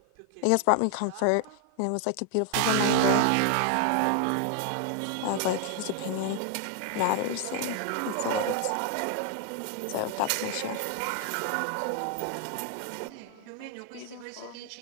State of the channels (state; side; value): different; both; correlation 0.00